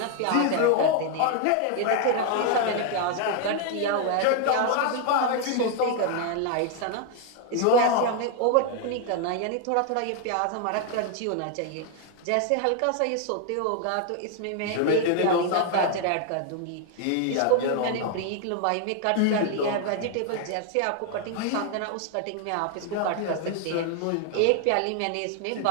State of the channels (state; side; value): different; both; correlation 0.00